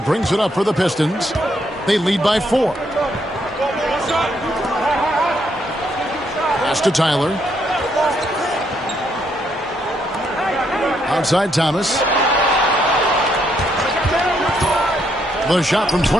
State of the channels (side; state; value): both; normal; correlation 0.74